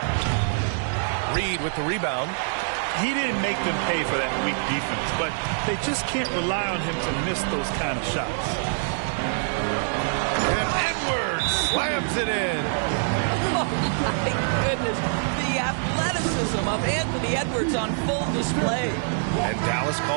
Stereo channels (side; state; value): left; silent; digital silence